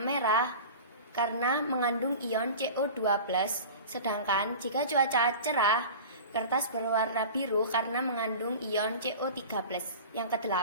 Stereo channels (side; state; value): both; inverted; correlation -0.35